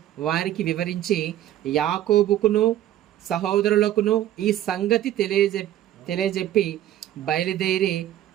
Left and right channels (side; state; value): left; quieter; 12.5 dB